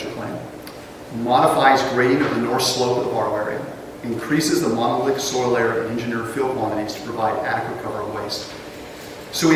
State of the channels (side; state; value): both; identical; correlation 1.00